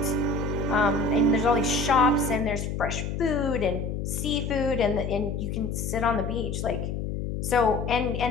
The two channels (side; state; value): left; noise; hum, 3 dB below the sound